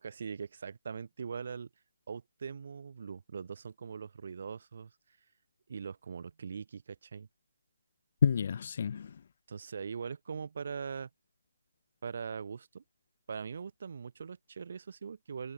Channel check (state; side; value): inverted; both; correlation -0.79